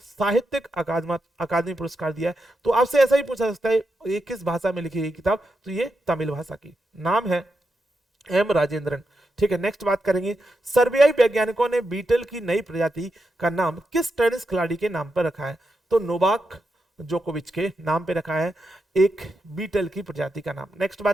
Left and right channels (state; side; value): normal; both; correlation 0.86